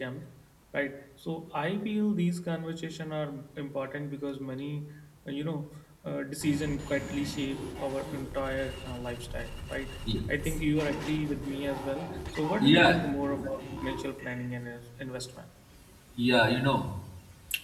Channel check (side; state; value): both; identical; correlation 1.00